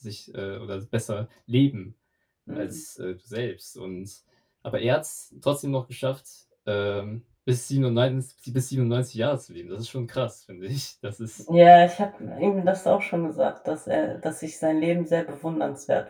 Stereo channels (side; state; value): both; identical; correlation 1.00